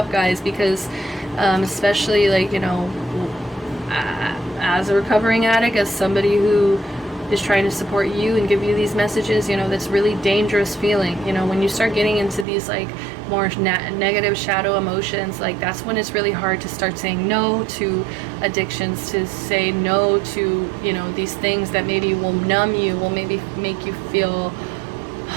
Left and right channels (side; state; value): left; drops out; at 12.5 s